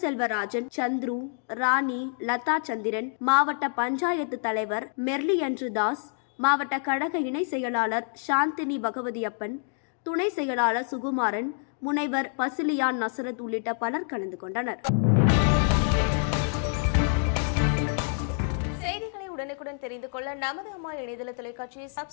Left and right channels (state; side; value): silent; right; 60 dB below the other